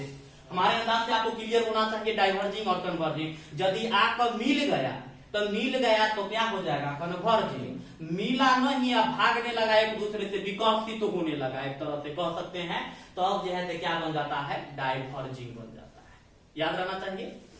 हमारे अंदाज से आपको क्लियर होना चाहिए डाइवर्जिंग और कन्वर्जिंग। यदि आपका मिल गया तो क्या हो जाएगा, कन्वर्जिंग। मिला नहीं, अब भागने लगा एक दूसरे से, विकसित तो होने लगा एक तरह से कह सकते हैं, तो अब जो है क्या बन जाता है, डाइवर्जिंग बन जाता है। याद रहना चाहिए,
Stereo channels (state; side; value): identical; both; correlation 1.00